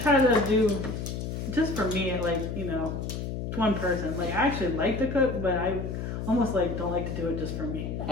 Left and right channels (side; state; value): left; noise; hum, 4 dB below the sound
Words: to do just for me, like one person. Like I actually like to cook, but I almost like don't like to do it just for me.